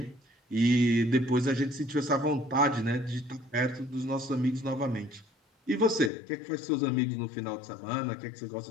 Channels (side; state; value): right; drops out; at 6.1 s